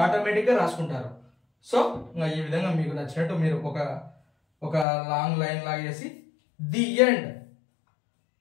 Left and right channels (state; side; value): drops out; right; at 4.9 s